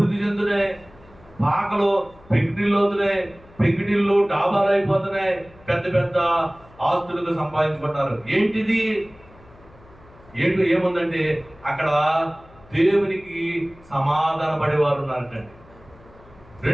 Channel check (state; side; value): noise; left; hum, 25 dB below the sound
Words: చెందుతున్నాయి, పాకలు పెంకిటిల్లు అవుతున్నాయి, పెంకిటిల్లు డాబాలు అయిపోతున్నాయి, పెద్ద పెద్ద ఆస్తులుగా సంపాదించుకుంటున్నారు. ఏంటిది? ఏముందంటే అక్కడ దేవునికి సమాధాన పడేవారు ఉన్నారటండి.